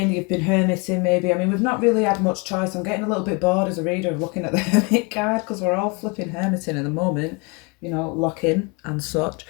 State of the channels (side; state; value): right; quieter; 31.0 dB